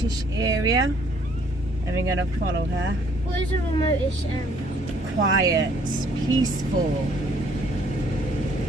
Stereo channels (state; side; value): normal; both; correlation 0.62